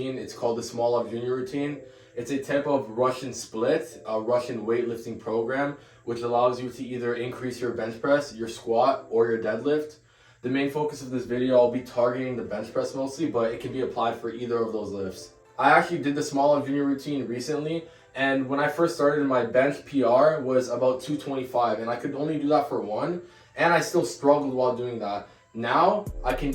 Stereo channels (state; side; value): identical; both; correlation 1.00